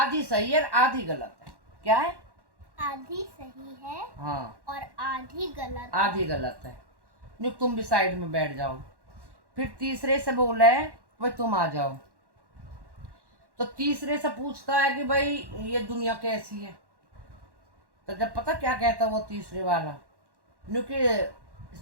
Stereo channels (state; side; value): late; left; 1.1 ms